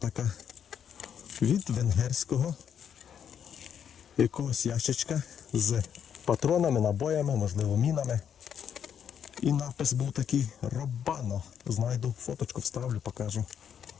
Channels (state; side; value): quieter; right; 8.4 dB